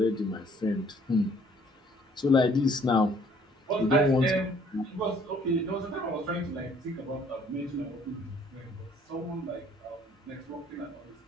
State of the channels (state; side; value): normal; both; correlation 0.60